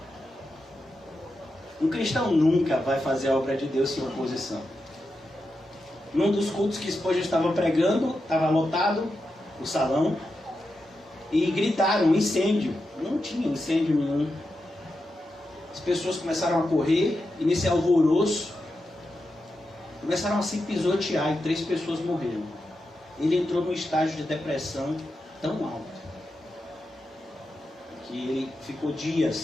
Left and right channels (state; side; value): normal; both; correlation 0.88